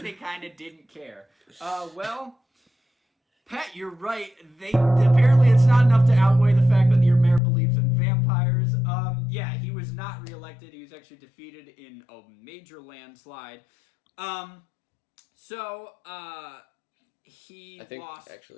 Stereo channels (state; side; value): drops out; right; at 7.4 s